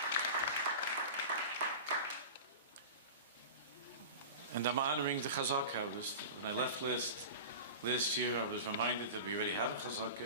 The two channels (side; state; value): both; inverted; correlation -0.32